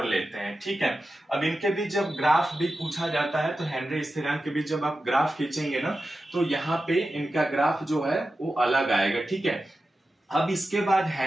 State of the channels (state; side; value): normal; both; correlation 0.92